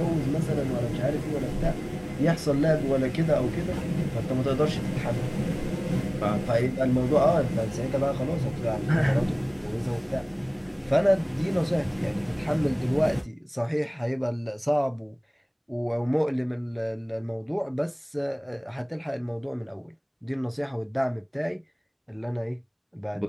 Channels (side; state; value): both; identical; correlation 1.00